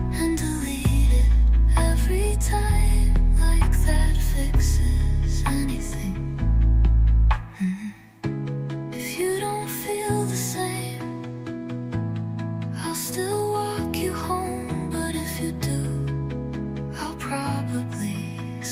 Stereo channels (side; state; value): both; identical; correlation 1.00